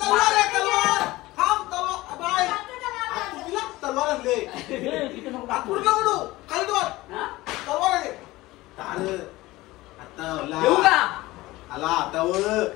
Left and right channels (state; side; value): quieter; right; 18.9 dB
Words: तलवार आणले. देऊ का? आला आता